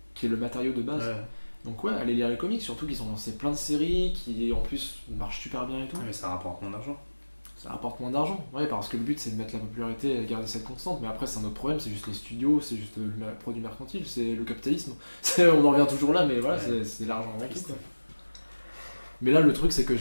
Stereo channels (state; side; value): inverted; both; correlation -1.00